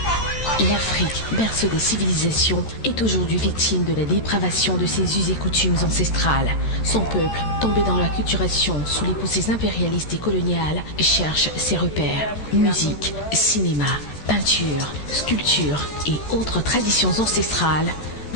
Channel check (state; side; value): late; right; 14 ms